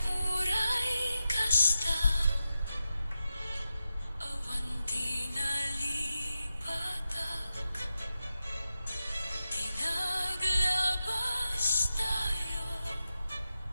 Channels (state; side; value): inverted; both; correlation -0.90